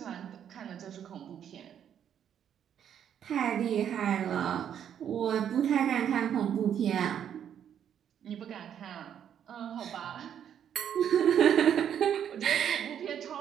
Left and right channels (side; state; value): left; quieter; 9.2 dB